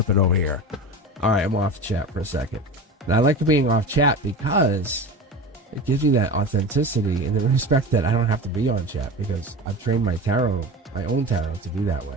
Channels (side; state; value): both; normal; correlation 0.30